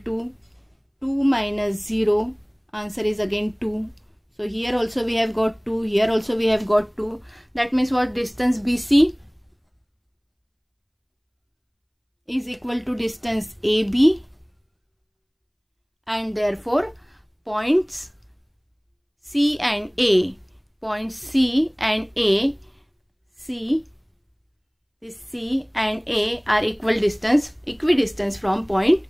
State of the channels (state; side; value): identical; both; correlation 1.00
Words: to 2 minus 0. Answer is again 2. So here also we have got 2. Here also we have got 2. That means what? Distance BC is equal to distance AB, and therefore points C and A, points C and A, this C and A are equidistance from point